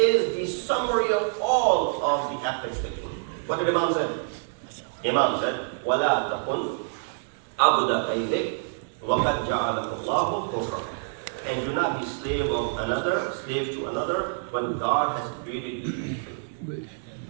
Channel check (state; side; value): silent; left; digital silence